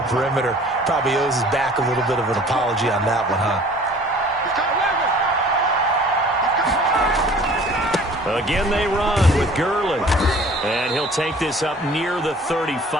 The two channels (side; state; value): both; normal; correlation 0.49